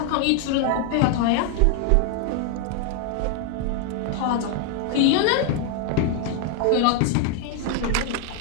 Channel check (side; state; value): both; different; correlation 0.00